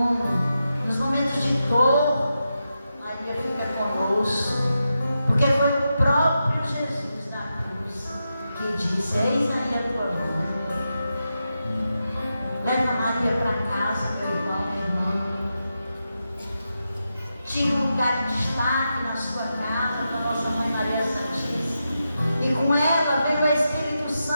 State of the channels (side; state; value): both; inverted; correlation -0.88